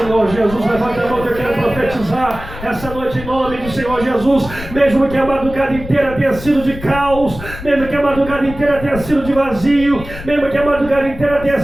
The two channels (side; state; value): left; noise; rumble, 12 dB below the sound